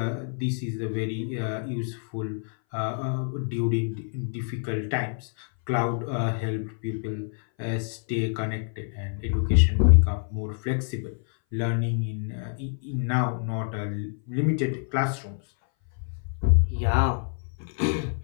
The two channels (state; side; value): silent; right; 58 dB below the other